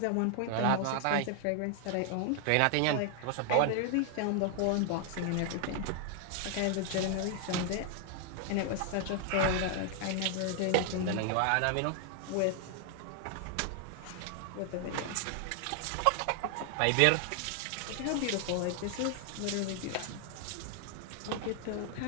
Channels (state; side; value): different; both; correlation 0.00